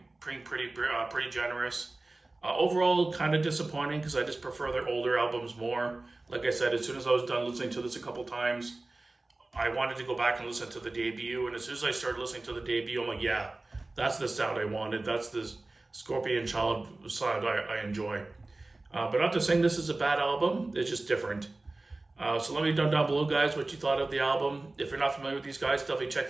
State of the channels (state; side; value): quieter; left; 3.0 dB